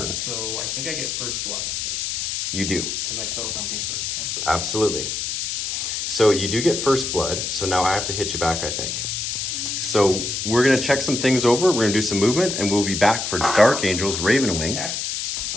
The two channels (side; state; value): left; noise; hiss, 2 dB below the sound